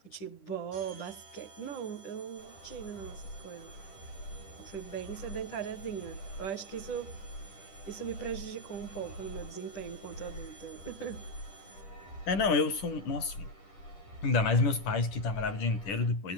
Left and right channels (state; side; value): late; right; 10 ms